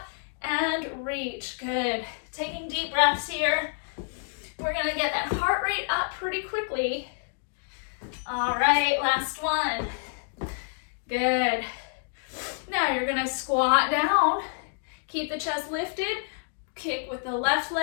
and reach, good. Taking deep breaths here. We're gonna get that heart rate up pretty quickly. All right, last one. Good. Now you're gonna squat down, keep the chest lifted, kick with the left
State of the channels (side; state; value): right; silent; digital silence